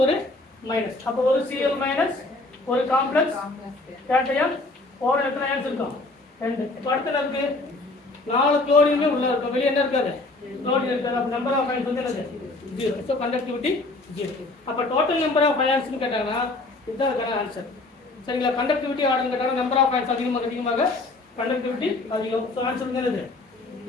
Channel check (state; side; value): quieter; right; 3.1 dB